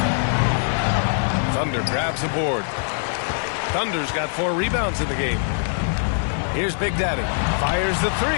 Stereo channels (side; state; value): right; silent; digital silence